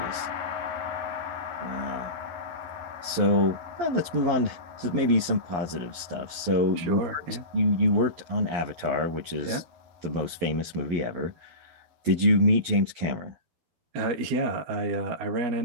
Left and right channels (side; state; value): left; late; 12 ms